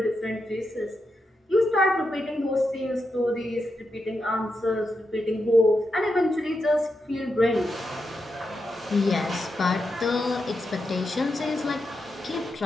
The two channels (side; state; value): both; normal; correlation 0.86